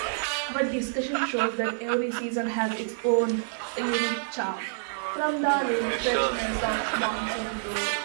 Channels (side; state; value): left; silent; digital silence